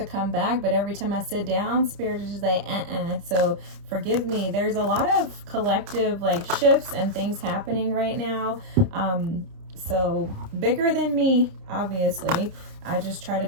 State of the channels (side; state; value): left; late; 30 ms